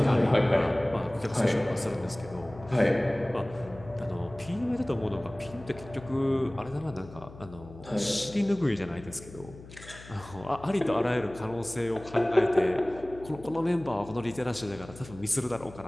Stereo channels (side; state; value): left; noise; hum, 17 dB below the sound